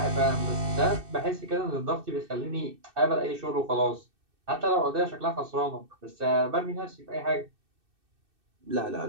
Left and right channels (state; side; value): late; left; 2.6 ms